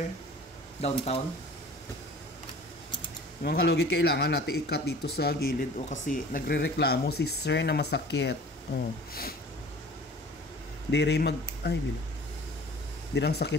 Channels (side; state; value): both; normal; correlation 0.45